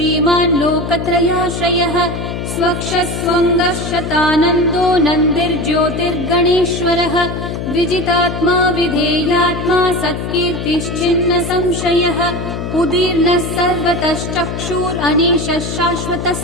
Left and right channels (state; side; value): noise; left; hum, 5 dB below the sound